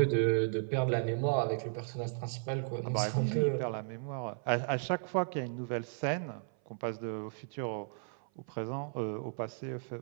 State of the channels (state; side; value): silent; left; 55 dB below the other